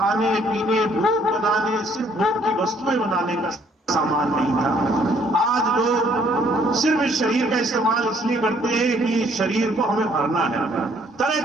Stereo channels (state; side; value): normal; both; correlation 0.64